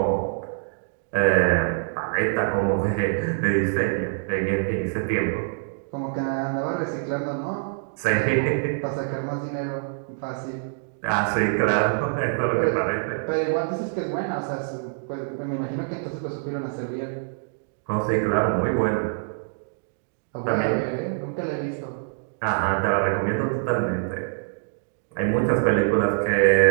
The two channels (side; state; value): left; silent; digital silence